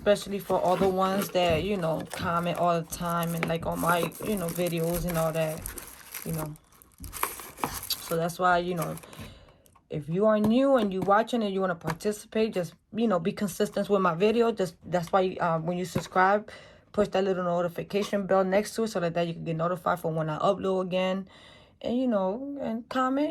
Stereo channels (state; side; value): identical; both; correlation 1.00